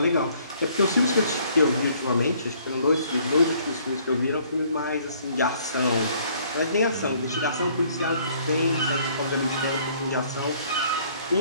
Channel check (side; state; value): both; inverted; correlation -0.61